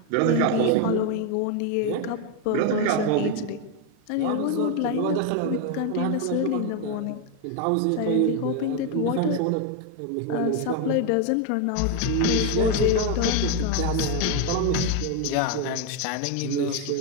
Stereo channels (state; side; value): different; both; correlation 0.01